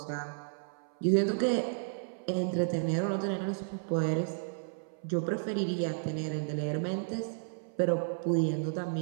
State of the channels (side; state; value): left; silent; 55 dB below the other